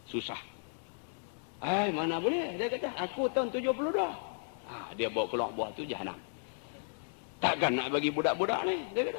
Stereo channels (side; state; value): right; silent; 55 dB below the other